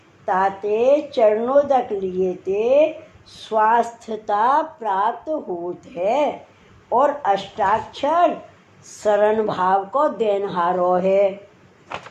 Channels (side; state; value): both; identical; correlation 1.00